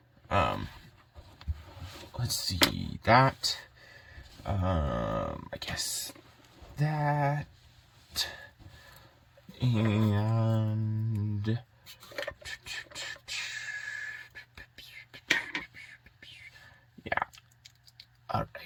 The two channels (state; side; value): identical; both; correlation 1.00